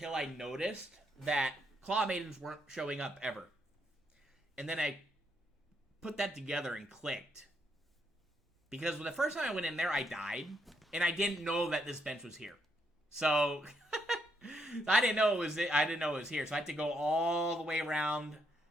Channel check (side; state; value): both; normal; correlation 0.76